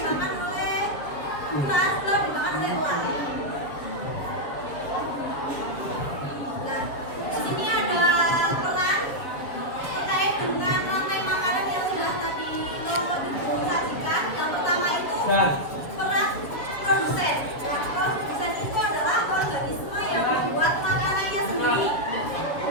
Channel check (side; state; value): right; late; 7.3 ms